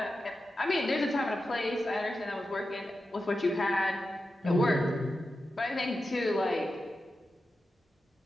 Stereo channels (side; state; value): both; normal; correlation 0.91